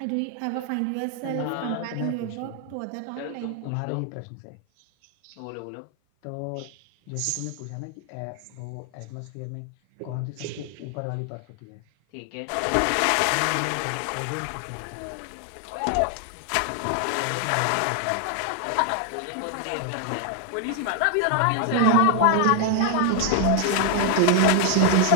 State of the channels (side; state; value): both; different; correlation 0.00